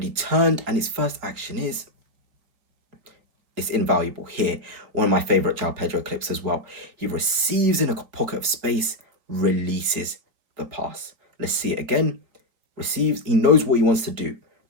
turned, and his first action is, it's invaluable here. One of my favorite Joao Pedro clips as well. He receives in a pocket of space, releases the pass. Let's see it again. Receives, he knows what he wants to do.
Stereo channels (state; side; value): late; left; 4.3 ms